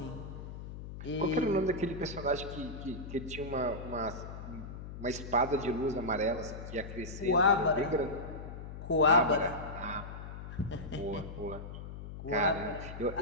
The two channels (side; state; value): left; noise; hum, 10 dB below the sound